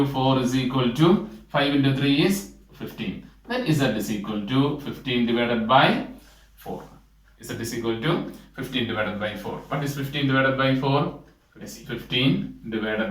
4 is equal to 5 into 3 is 15. Then z is equal to 15 divided by 4. Z is equal to 15 divided by 4. What is 15 divided by 4? Let's see. 15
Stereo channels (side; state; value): both; identical; correlation 1.00